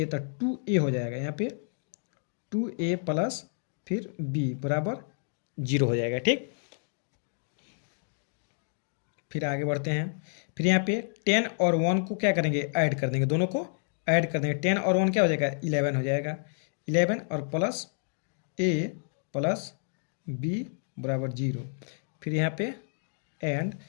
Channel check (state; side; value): silent; right; digital silence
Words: तो 2a हो जाएगा। यहाँ पे 2a प्लस फिर b बराबर 0 हो जाएगा। ठीक, फिर आगे बढ़ते हैं। फिर यहाँ पे 10 और 1 को क्या करेंगे, ऐड कर देंगे, दोनों को ऐड कर देंगे। 10 और 1 क्या हो जाएगा, 11 हो जाएगा। 11 और प्लस a प्लस b बराबर 0। फिर यहाँ पे एंड,